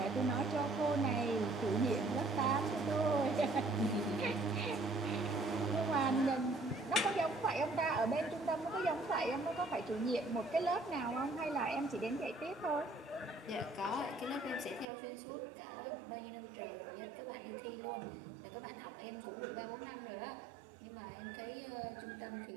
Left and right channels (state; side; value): drops out; left; at 14.9 s